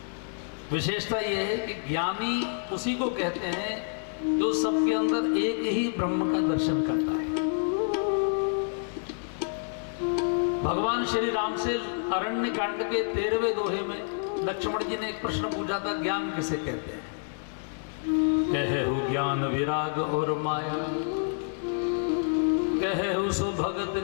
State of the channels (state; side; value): silent; right; digital silence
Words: विशेषता यह है कि ज्ञानी उसी को कहते हैं जो सबके अंदर एक ही ब्रह्म का दर्शन करता है। भगवान श्री राम से अरण्य कांड के 13वें दोहे में लक्ष्मण जी ने एक प्रश्न पूछा था, ज्ञान किसे कहते हैं? कहे हु ज्ञान विराग और माया, कहे हु सो भगत